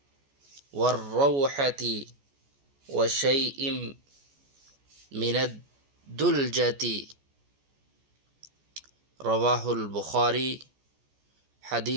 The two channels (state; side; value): late; left; 14 ms